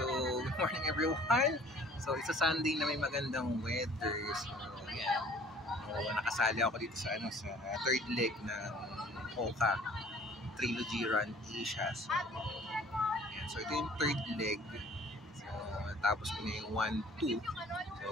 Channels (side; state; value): both; normal; correlation 0.52